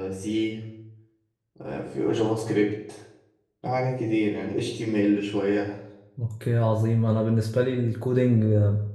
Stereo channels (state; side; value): identical; both; correlation 1.00